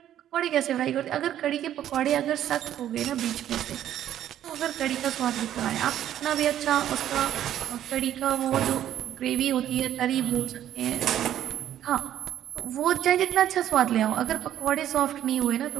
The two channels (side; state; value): left; quieter; 11.3 dB